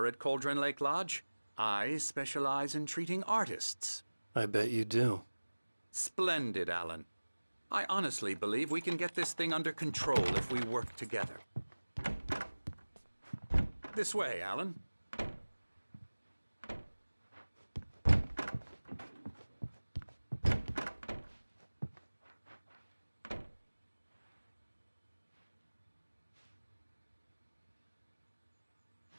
at Cauldron Lake Lodge. I specialize in treating artists. I bet you do. Splendid, Alan. I honestly believe we can get this thing under control if we work together. This way, Alan.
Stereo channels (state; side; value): inverted; both; correlation -1.00